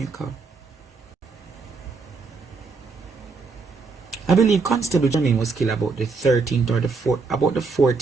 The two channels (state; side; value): quieter; left; 4.4 dB